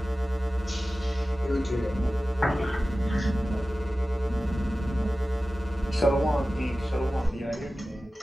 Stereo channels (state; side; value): normal; both; correlation 0.96